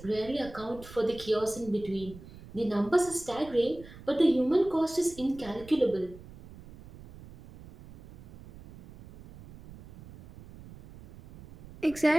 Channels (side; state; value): right; noise; rumble, 18 dB below the sound